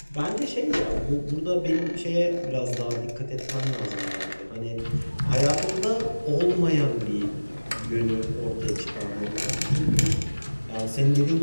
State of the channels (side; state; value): both; inverted; correlation -1.00